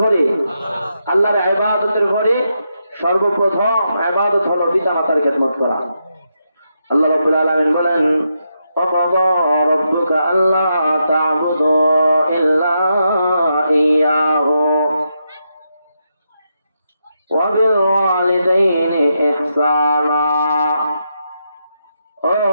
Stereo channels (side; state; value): both; inverted; correlation -0.83